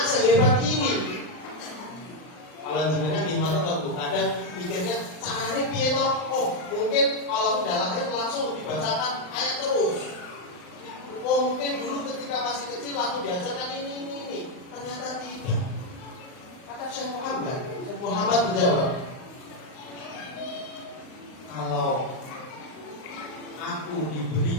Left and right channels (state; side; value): late; right; 39 ms